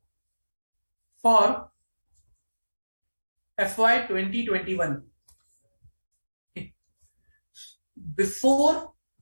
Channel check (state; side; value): inverted; both; correlation -1.00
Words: for FY 2021. Before